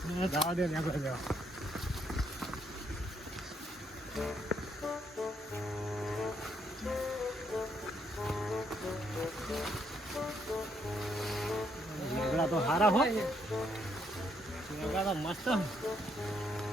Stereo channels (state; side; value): normal; both; correlation 0.73